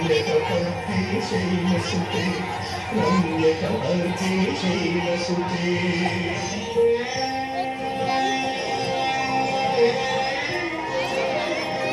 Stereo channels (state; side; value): identical; both; correlation 1.00